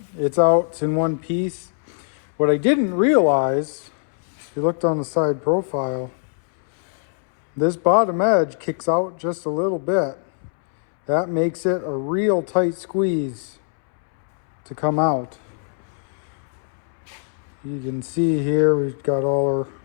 it's out, it's in one piece. What I didn't realize, if you looked on the side profile, this bottom edge kicks out just a little bit. That makes it a real tight squeeze to come out. You can see here we've got all our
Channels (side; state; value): right; silent; 64 dB below the other